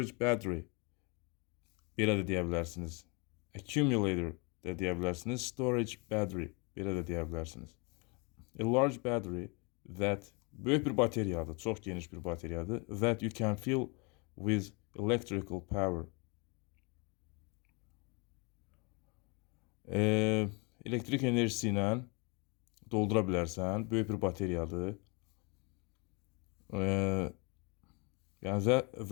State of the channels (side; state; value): right; quieter; 31.1 dB